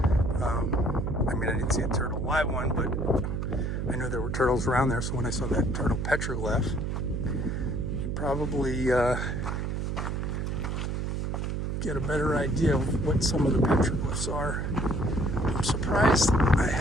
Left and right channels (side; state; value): right; noise; hum, 1 dB below the sound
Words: I mean, I didn't see a turtle live one, but I knew there were turtles around there. So when I saw that turtle petroglyph, probably get a better idea of what some of the petroglyphs are. I'm surprised I